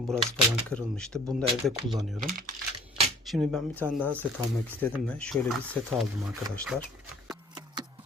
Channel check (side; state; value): both; normal; correlation 0.53